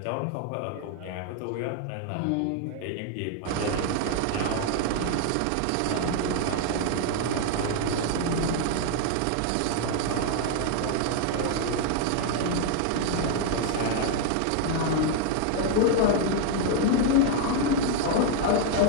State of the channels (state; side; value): different; both; correlation 0.00